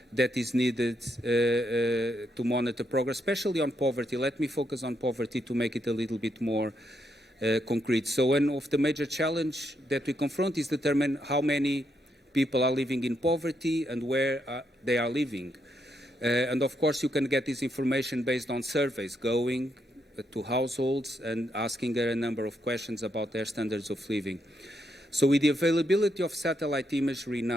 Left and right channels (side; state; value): both; normal; correlation 0.79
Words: that is needed to monitor progress, especially on poverty. Let me focus on poverty to make it a little bit more concrete. So one of the major challenges that we confront is determine how many people are living in poverty and where they are living. And of course, you can get this information based on surveys going to households and asking a number of questions about their standards of living. So with the availability of satellite imagery